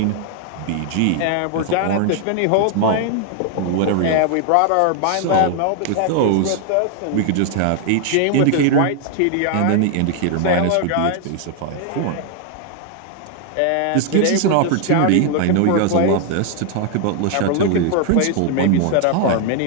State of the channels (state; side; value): different; both; correlation 0.00